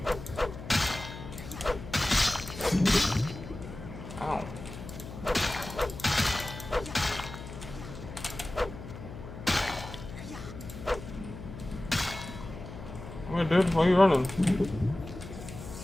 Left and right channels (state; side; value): noise; left; hum, 11 dB below the sound